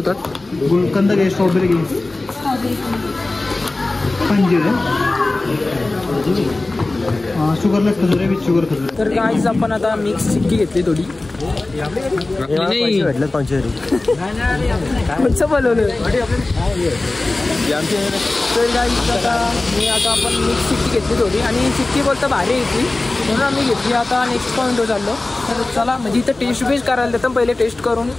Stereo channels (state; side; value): quieter; right; 3.0 dB